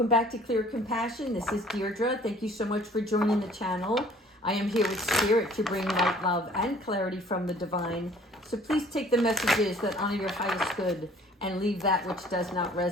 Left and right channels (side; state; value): both; normal; correlation 0.54